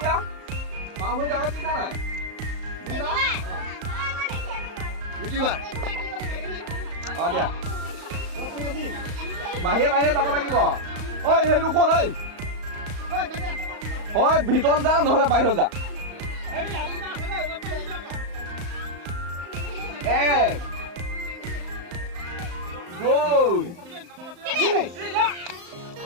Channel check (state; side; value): late; left; 35 ms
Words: বাওঁ ভৰিটো আগত দিছা নাই দিয়া বাহিৰে যাব লাগিব ঐ সেইটো কোন হয় ভিতৰত যা নহ'লে বাহিৰত যা এক দুই তিনি